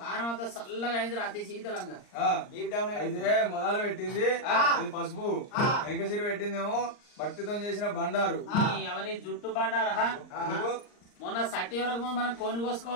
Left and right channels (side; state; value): right; late; 39 ms